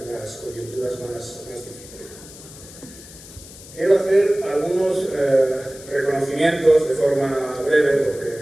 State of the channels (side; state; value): left; noise; hiss, 18 dB below the sound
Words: las coyunturas más difíciles. Quiero hacer algunos reconocimientos de forma breve, porque